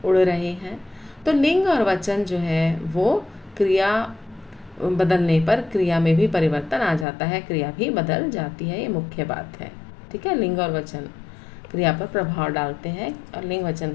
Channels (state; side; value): drops out; right; at 7.1 s